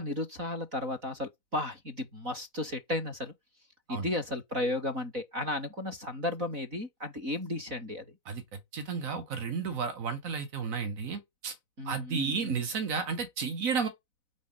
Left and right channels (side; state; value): left; late; 4.0 ms